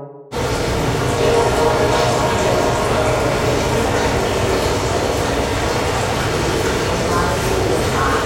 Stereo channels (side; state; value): both; identical; correlation 1.00